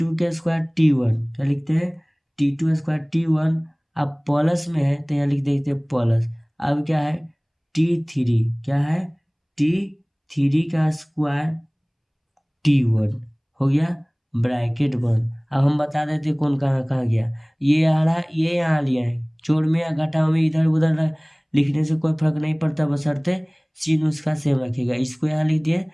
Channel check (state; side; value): identical; both; correlation 1.00